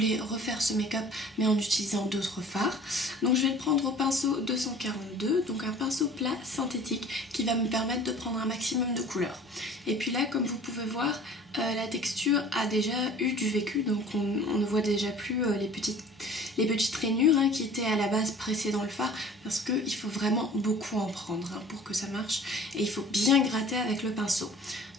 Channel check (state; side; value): normal; both; correlation 0.47